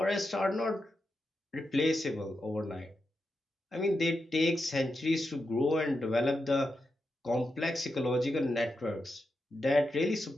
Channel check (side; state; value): both; normal; correlation 0.87